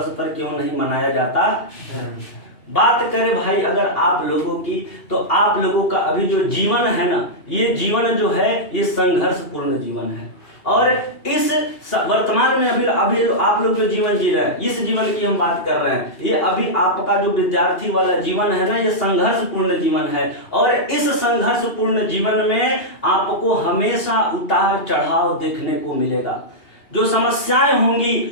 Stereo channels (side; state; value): right; late; 2.8 ms